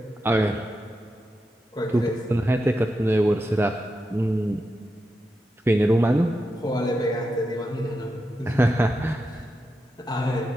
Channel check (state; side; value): normal; both; correlation 0.88